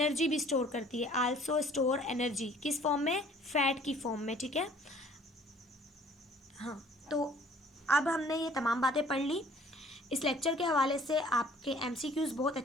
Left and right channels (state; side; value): normal; both; correlation 0.54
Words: भी स्टोर करती है, आल्सो स्टोर एनर्जी, किस फॉर्म में, फैट की फॉर्म में, ठीक है। हाँ, तो अब हमने ये तमाम बातें पढ़ ली। इस लेक्चर के हवाले से आपके एमसीक्यूज़ बहुत